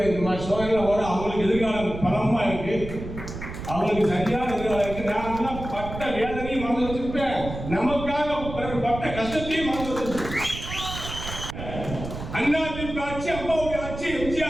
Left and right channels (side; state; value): right; noise; rumble, 9 dB below the sound